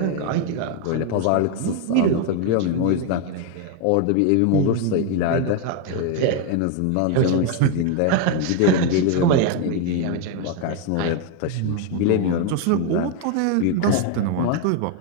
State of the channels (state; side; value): different; both; correlation 0.01